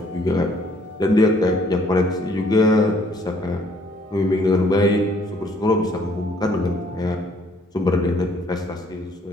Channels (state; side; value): normal; both; correlation 0.63